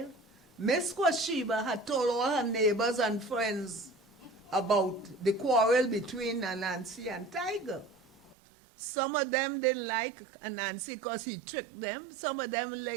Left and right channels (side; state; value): left; drops out; at 8.3 s